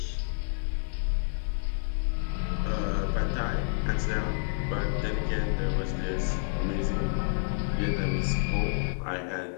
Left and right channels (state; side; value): silent; right; digital silence